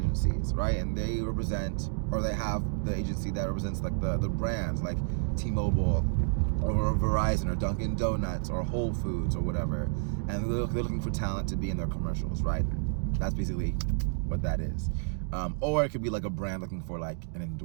right? And they represent, or they have the agency that represents like the brands like T-Mobile or Verizon or Dunkin' Donuts or Whole Foods or whatever. And they're looking for talent to be in their commercials, right? That's basically what that is. Or it could be like a brand looking for like an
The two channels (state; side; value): silent; left; digital silence